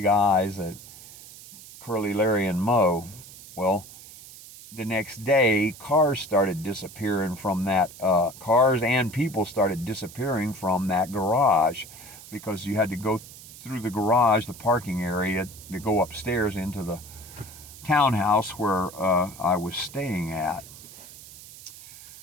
eyes at Curly, Larry, and Moe. Well, the next day, cars started disappearing from that, cars and people started disappearing from that garage, because you had to go through the garage, the parking area, to go upstairs into the townhouse where I was staying at.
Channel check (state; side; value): noise; right; hiss, 17 dB below the sound